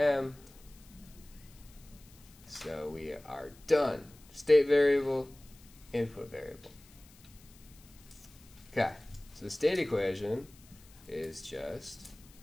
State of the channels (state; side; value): noise; left; hiss, 24 dB below the sound